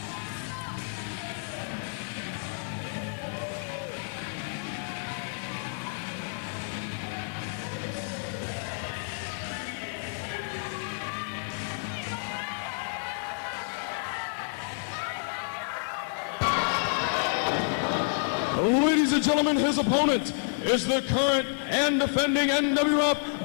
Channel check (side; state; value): right; silent; digital silence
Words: Ladies and gentlemen, his opponent is the current and defending